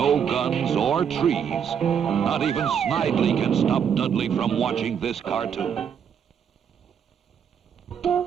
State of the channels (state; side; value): quieter; left; 7.8 dB